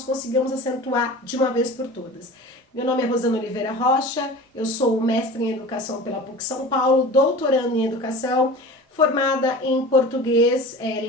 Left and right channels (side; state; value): both; normal; correlation 0.37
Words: consigamos acentuar de uma vez por todas. Meu nome é Rosana Oliveira Rocha, eu sou mestre em educação pela PUC São Paulo, doutorando em educação, formada em português,